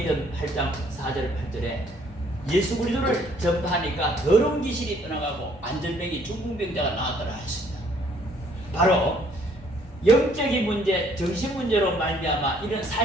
8장 4절 8절에 예수 그리스도를 전파하니까 더러운 귀신이 떠나가고 안전병이 중풍병자가 나왔더라 했습니다. 바로 영적인 문제, 정신 문제로 말미암아 이런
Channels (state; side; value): normal; both; correlation 0.63